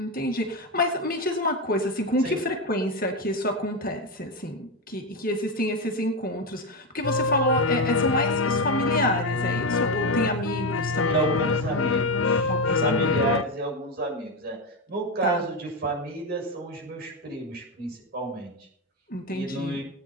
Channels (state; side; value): normal; both; correlation 0.11